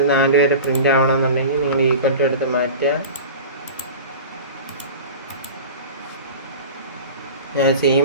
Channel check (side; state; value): both; inverted; correlation -0.34